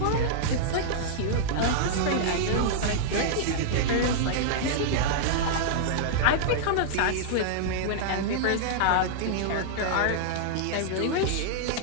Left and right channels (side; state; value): both; different; correlation -0.02